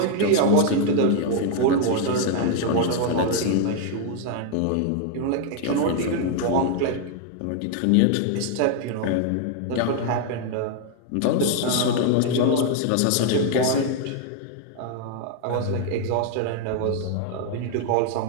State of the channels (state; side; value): different; both; correlation 0.00